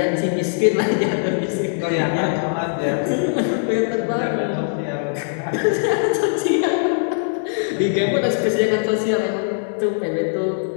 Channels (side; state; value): right; silent; digital silence